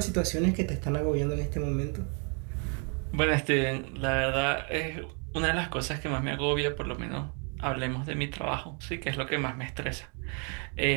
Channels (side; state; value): left; quieter; 38.0 dB